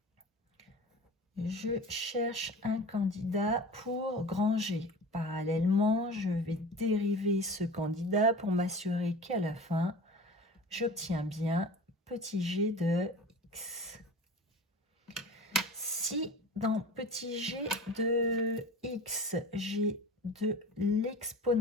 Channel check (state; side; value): normal; both; correlation 0.36